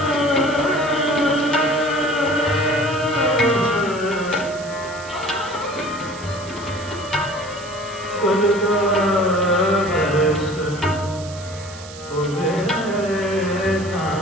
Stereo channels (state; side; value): noise; right; hiss, 16 dB below the sound